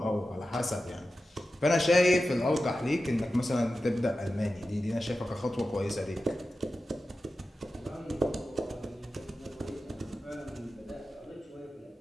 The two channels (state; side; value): normal; both; correlation 0.92